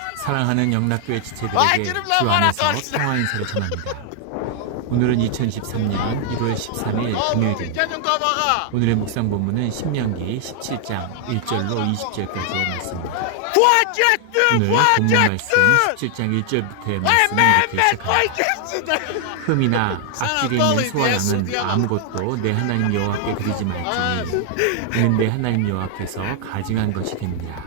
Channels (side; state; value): both; different; correlation 0.00